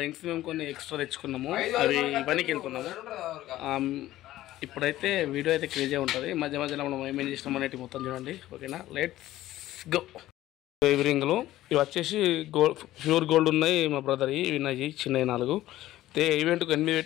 రింగ్స్ మేము కొన్ని ఎక్స్ట్రా తెచ్చుకున్నాము, అవి పనికి వెళ్తున్నాము. ఇప్పుడైతే వీడియో అయితే క్రేజీ ఉంటుంది. మధ్య మధ్యలో మనం ఏమేం చేసినాం అనేది మొత్తం చూడండి. ఓకేనా, లెట్స్ గో. ఇవి రింగులు ఇవి వచ్చేసి గోల్డ్, ప్యూర్ గోల్డ్ ఉన్నాయి మా బ్రదర్. ఇవి ఉన్నాయి చిన్నవి 4. అయితే ఈవెంట్కి 8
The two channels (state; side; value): quieter; right; 14.9 dB